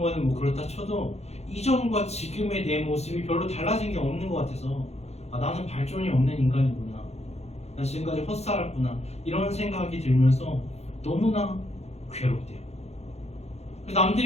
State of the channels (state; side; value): late; right; 0.31 ms